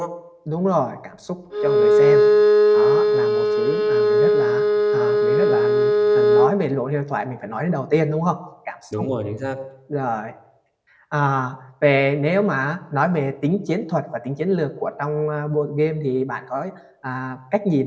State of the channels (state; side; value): identical; both; correlation 1.00